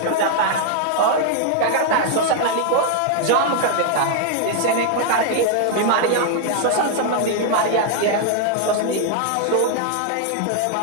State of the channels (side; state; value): both; different; correlation 0.00